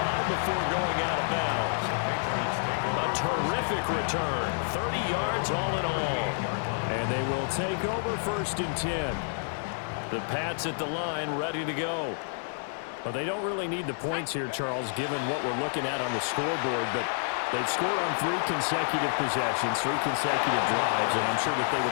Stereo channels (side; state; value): right; silent; digital silence